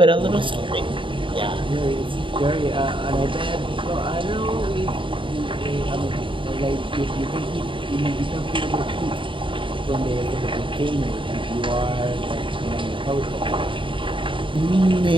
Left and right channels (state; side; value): late; left; 0.25 ms